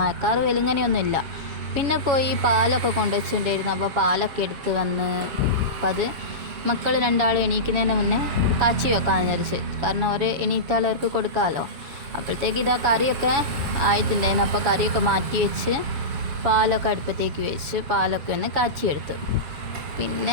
വെലുങ്ങനെയൊന്നുമില്ല. പിന്നെ പോയി പാലൊക്കെ കൊണ്ടുവച്ചിട്ടുണ്ടായിരുന്നു. അപ്പോൾ പാലൊക്കെ എടുത്ത് വന്ന് അപ്പം അത് മക്കൾ രണ്ടാളും എണീക്കുന്നതിന് മുന്നേ കാച്ചി വെക്കാമെന്ന് വിചാരിച്ച്. കാരണം അവർ എണീറ്റാൽ അവർക്ക് കൊടുക്കാമല്ലോ. അപ്പോഴത്തേക്ക് ഇതാ കറിയൊക്കെ ആയിട്ടുണ്ടായിരുന്നു. അപ്പോൾ കറിയൊക്കെ മാറ്റി വെച്ച് പാലൊക്കെ അടുപ്പത്തേക്ക് വെച്ച് പാലൊക്കെ ഒന്ന് കാച്ചിയെടുത്തു. പിന്നെ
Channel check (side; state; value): left; late; 7.1 ms